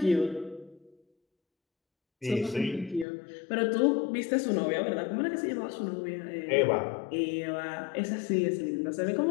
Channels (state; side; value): drops out; right; at 3.1 s